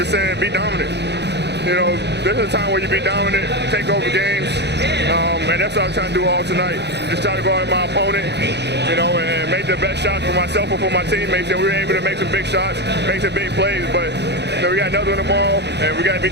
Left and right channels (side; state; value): left; late; 0.50 ms